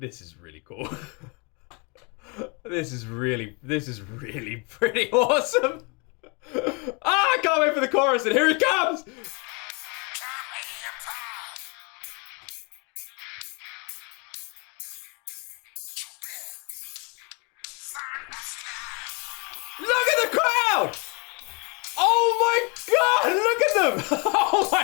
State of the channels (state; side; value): quieter; right; 32.0 dB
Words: is really cool. This is really pretty awesome. Ah, I can't wait for the chorus, and here it comes! Look at the crowd! Oh my god, look at them! Oh